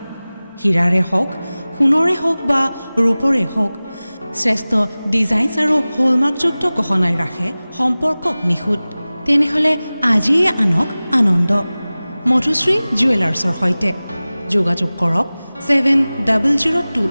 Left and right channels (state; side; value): inverted; both; correlation -0.98